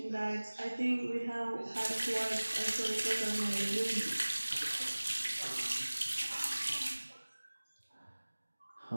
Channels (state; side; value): inverted; both; correlation -1.00